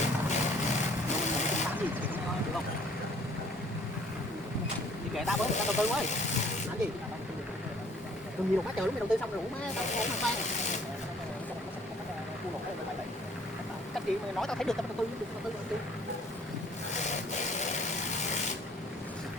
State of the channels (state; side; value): normal; both; correlation 0.57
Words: Đi kệ tao với, tao đầu tư quá. Làm gì? Đừng nhiều quá trời lúc mày đầu tư xong rồi má tao không mang ban. Cách gì mày nói tao thấy được tao đầu tư đầu tư.